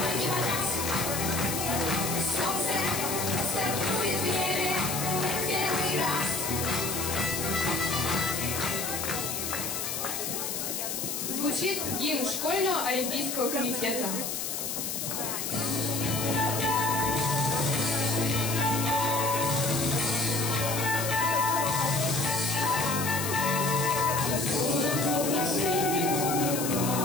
не погас. Солнце стартует в небе в первый раз. Звучит гимн школьного олимпийского комитета.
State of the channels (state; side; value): noise; left; hiss, 3 dB below the sound